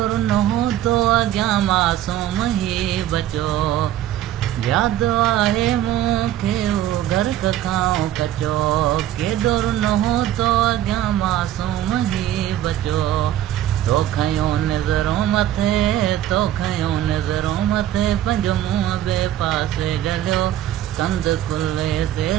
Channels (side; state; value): left; quieter; 12.5 dB